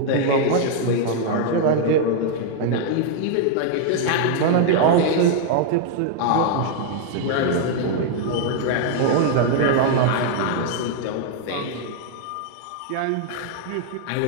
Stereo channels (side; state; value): both; different; correlation 0.00